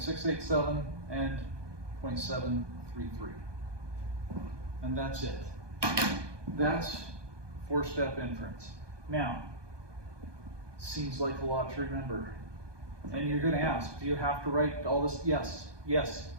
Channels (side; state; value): left; late; 1.2 ms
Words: and 0.733. And that's it. That's 4-step inference. Now, seems like a lot to remember. And you're going to ask, do you have to write all this? Yes, yes,